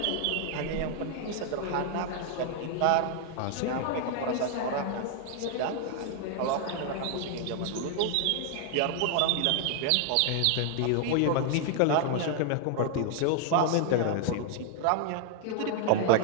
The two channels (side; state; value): both; different; correlation 0.00